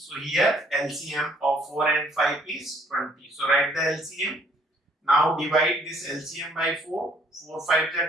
here LCM of 4 and 5 is 20. So write the LCM. Now divide this LCM by 4. 4 5 is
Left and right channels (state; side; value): normal; both; correlation 0.63